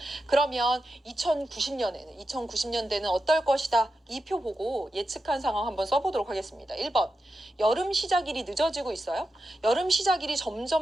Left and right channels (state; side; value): normal; both; correlation 0.89